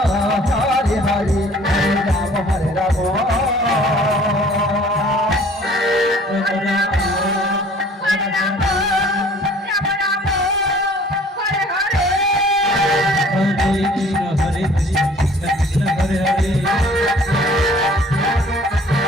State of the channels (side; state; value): both; normal; correlation 0.53